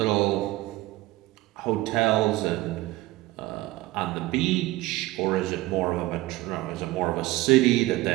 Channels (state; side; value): quieter; left; 18.3 dB